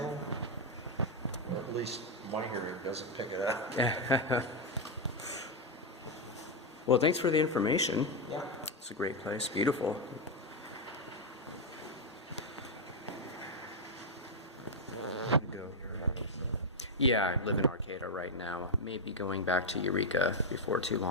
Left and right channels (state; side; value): normal; both; correlation 0.02